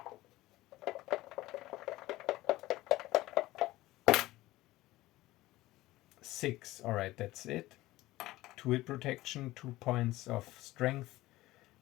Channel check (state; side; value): quieter; right; 17.7 dB